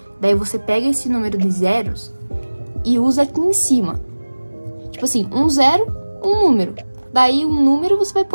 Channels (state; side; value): inverted; both; correlation -1.00